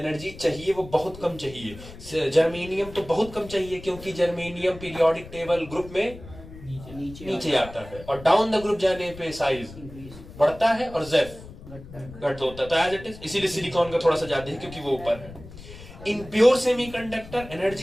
चाहिए वो बहुत कम चाहिए। जर्मेनियम तो बहुत कम चाहिए क्योंकि जर्मेनियम पीरियोडिक टेबल ग्रुप में नीचे आता है, और डाउन द ग्रुप जाने पे साइज बढ़ता है और जेफ घट होता है। तो एज इट इज इसीलिए सिलिकॉन का थोड़ा सा ज्यादा है क्योंकि वो ऊपर है। In pure semiconductor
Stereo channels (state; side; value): noise; left; rumble, 16 dB below the sound